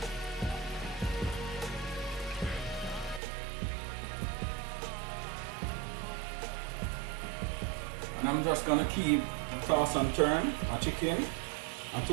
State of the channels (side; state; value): left; drops out; at 3.2 s